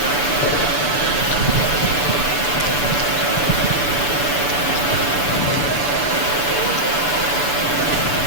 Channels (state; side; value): late; right; 6.9 ms